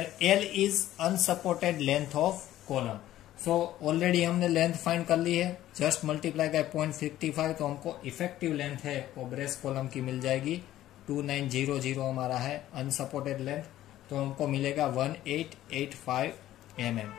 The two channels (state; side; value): quieter; right; 13.7 dB